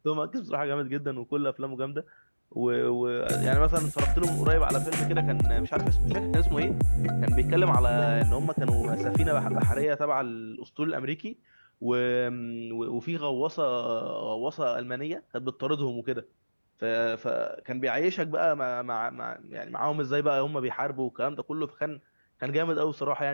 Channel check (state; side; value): inverted; both; correlation -1.00